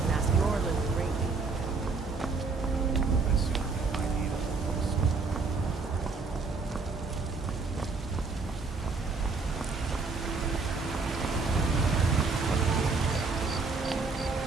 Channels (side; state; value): left; quieter; 4.2 dB